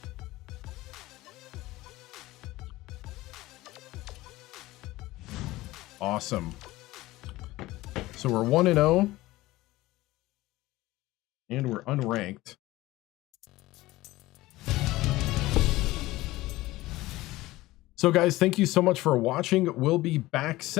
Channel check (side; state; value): right; quieter; 18.2 dB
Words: Awesome. So we're 1-0, and we're unranked. So guys, thank you so much for watching. We'll be back